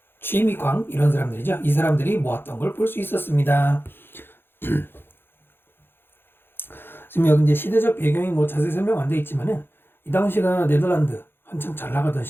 취미광 이런 사람들이죠. 이 사람들이 모았던 걸 볼 수 있었습니다. 지금 여기 이제 시대적 배경이 뭐 자세히 설명 안 돼 있지만은 이 당시가 네덜란드 한참 잘 나가던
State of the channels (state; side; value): late; right; 0.10 ms